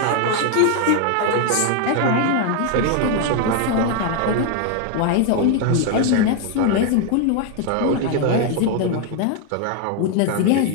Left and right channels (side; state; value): both; different; correlation 0.00